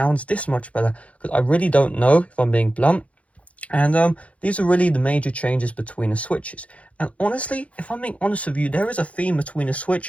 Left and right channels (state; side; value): late; right; 0.065 ms